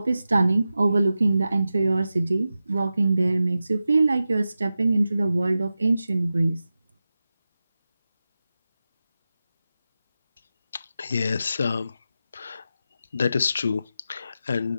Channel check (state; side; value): inverted; both; correlation -0.92